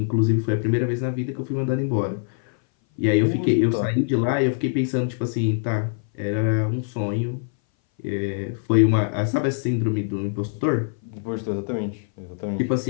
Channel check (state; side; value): silent; right; 59 dB below the other